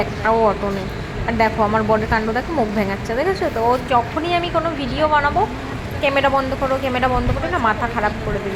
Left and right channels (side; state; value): both; identical; correlation 1.00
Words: একটাও অটো নেই। আর দেখো আমার বরের কাণ্ড দেখো, মুখ ভেঙাচ্ছে, দেখেছো তো? ও যখনই আমি কোনো ভিডিও বানাবো, ক্যামেরা বন্ধ করো ক্যামেরা বন্ধ করো না, মাথা খারাপ করে